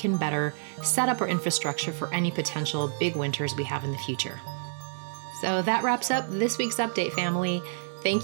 better set up our infrastructure for any potential big winters we have in the future. So that wraps up this week's update, family.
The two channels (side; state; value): left; silent; digital silence